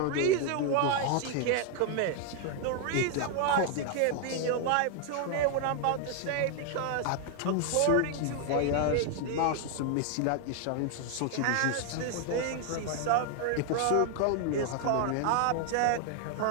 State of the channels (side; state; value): both; different; correlation 0.00